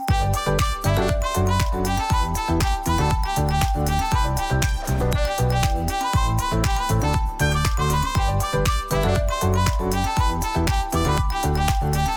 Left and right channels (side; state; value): both; identical; correlation 1.00